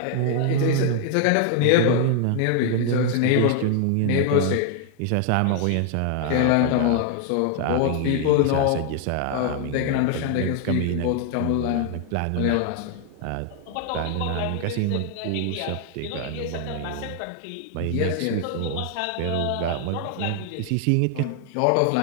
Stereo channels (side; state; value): both; different; correlation 0.00